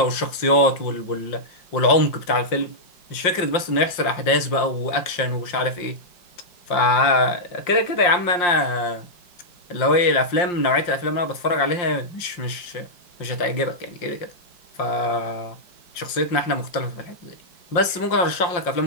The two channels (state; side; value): late; right; 5.6 ms